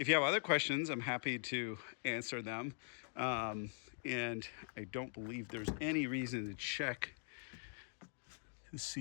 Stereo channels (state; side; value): silent; right; digital silence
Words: you have other questions, I'm happy to answer them. And I don't believe there's any reason to check to